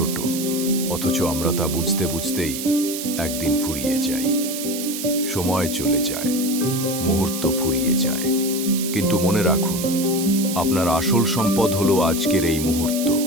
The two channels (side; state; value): right; noise; hiss, 6 dB below the sound